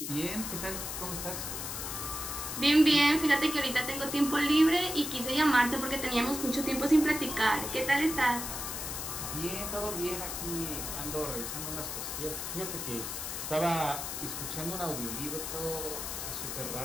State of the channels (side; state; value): left; noise; hiss, 5 dB below the sound